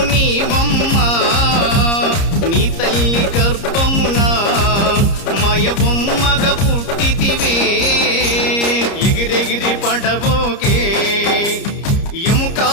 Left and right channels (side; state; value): right; late; 30 ms